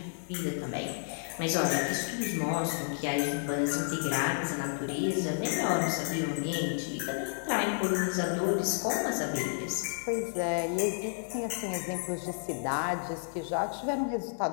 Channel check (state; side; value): silent; right; digital silence